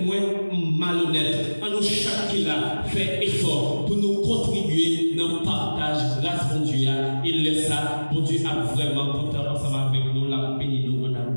moins malhonnête, à nous chaque là fait effort pour nous contribuer dans le partage grâce bon Dieu. Il laisse ça, bon Dieu a vraiment porté ensemble avec nous, la béni nous en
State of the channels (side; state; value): both; inverted; correlation -1.00